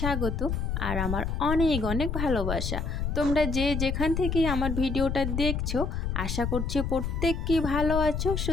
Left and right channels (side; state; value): left; noise; rumble, 2 dB below the sound